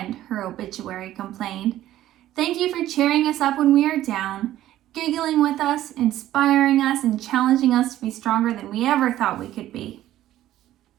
her obituary complained. Thank you for cheering us up when we are down, giggling with us, inspiring us, and challenging us to be stronger than we ever thought we could be.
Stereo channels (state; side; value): quieter; left; 13.6 dB